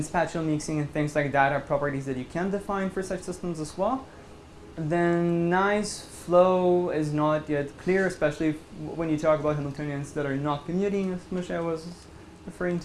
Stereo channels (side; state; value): both; identical; correlation 1.00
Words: spatial mixing and things like that are properties that you can define for such systems as well. Then nice flow is not yet clear, especially when you talk about Hamiltonians that are not commuting, as Moshe was referring